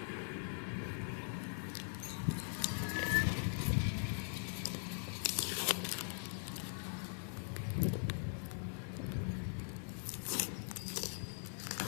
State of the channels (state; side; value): silent; right; digital silence